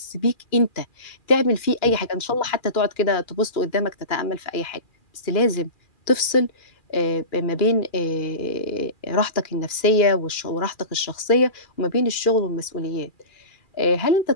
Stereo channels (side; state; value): right; late; 2.4 ms